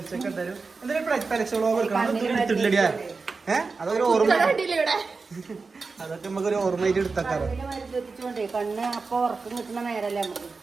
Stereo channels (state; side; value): quieter; left; 4.3 dB